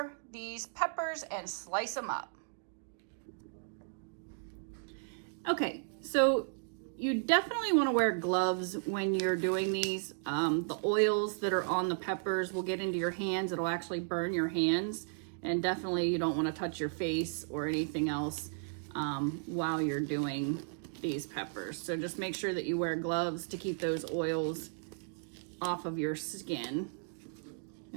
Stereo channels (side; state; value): left; silent; digital silence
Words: these peppers and slice them up. Okay, so you definitely want to wear gloves when you're doing these. The oils that are on the peppers will get into your hands. It'll actually burn your hands. And definitely you don't want to touch your face or anything else while you're doing these peppers. So just make sure that you wear gloves to keep those oils off of your skin.